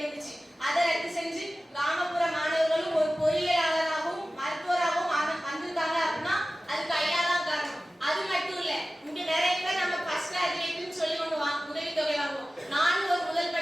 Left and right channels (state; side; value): normal; both; correlation 0.96